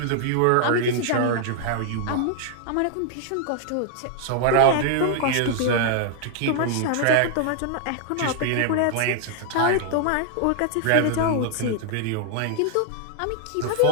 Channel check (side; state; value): both; different; correlation 0.00